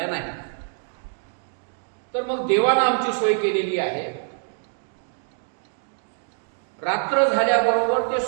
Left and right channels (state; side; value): silent; left; 61 dB below the other